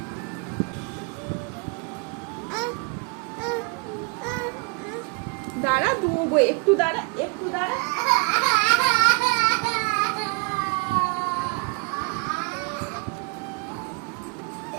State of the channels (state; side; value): quieter; left; 33.6 dB